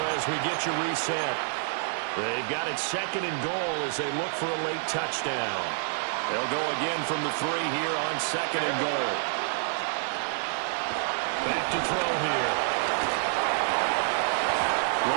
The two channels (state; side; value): silent; left; digital silence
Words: as we get you reset. They've got it 2nd and goal as they look for a late touchdown. They'll go again from the 3 here on 2nd and goal. Back to throw here.